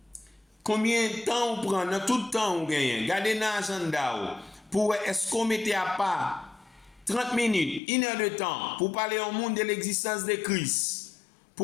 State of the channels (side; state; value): right; drops out; at 7.8 s